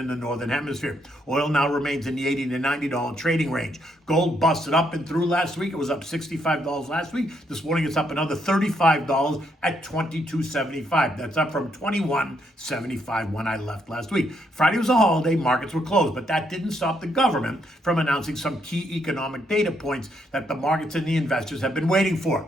the Northern Hemisphere. Oil now remains in the $80 to $90 trading range. Gold busted up and through last week. It was up $65 last week. This morning it's up another $35 at $22.75. That's up from $21.75 when I left last week. Friday was a holiday. Markets were closed, but that didn't stop the government from announcing some key economic data points that the markets and the investors have been waiting for,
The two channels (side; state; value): both; normal; correlation 0.75